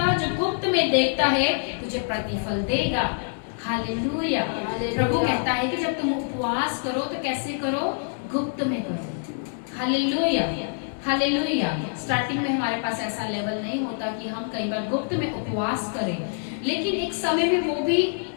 जो गुप्त में देखता है तुझे प्रतिफल देगा। हालेलुया। प्रभु कहता है कि जब तुम उपवास करो तो कैसे करो? गुप्त में करो। हालेलुया। हालेलुया। स्टार्टिंग में हमारे पास ऐसा लेवल नहीं होता कि हम कई बार गुप्त में उपवास करें, लेकिन एक समय में वो भी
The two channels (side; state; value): right; silent; digital silence